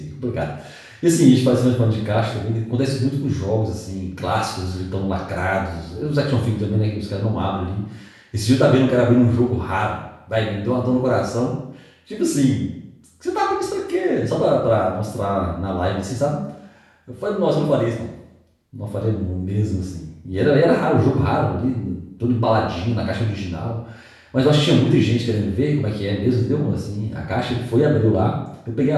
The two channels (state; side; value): identical; both; correlation 1.00